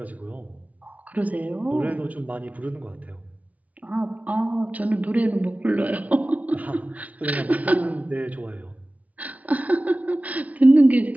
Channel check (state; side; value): late; left; 0.070 ms